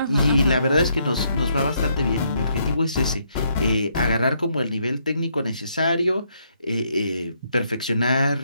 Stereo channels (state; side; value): inverted; both; correlation -0.74